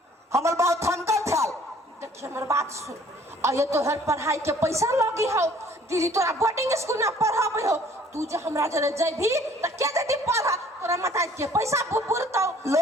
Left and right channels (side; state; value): both; normal; correlation 0.56